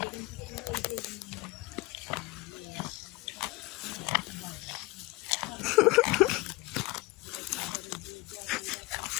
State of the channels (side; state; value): right; quieter; 21.6 dB